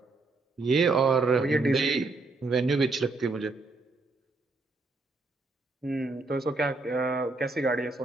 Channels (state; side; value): quieter; left; 3.5 dB